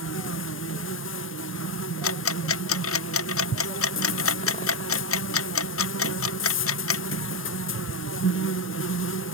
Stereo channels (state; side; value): normal; both; correlation 0.09